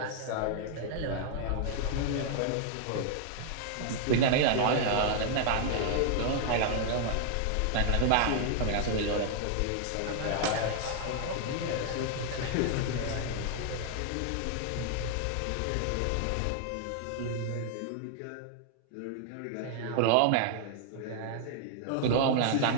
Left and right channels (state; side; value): different; both; correlation 0.00